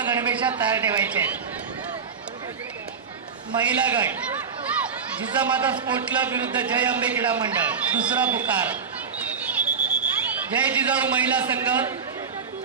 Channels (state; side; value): quieter; left; 5.9 dB